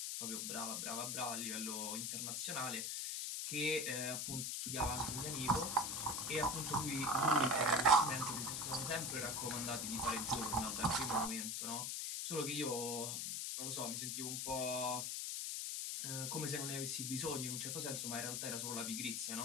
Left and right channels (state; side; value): noise; left; hiss, 1 dB below the sound